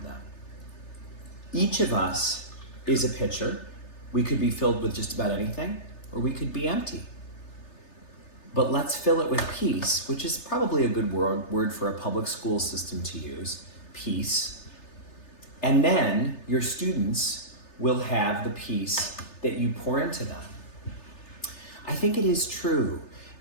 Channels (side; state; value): right; late; 3.3 ms